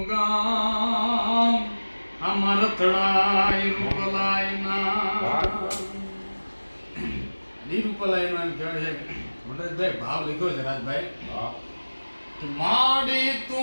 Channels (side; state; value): both; inverted; correlation -1.00